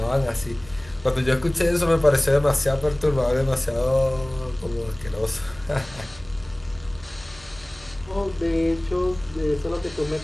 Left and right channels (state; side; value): noise; right; hum, 21 dB below the sound